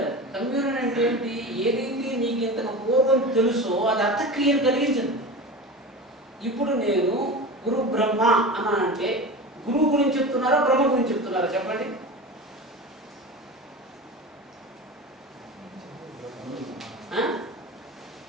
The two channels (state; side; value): normal; both; correlation 0.30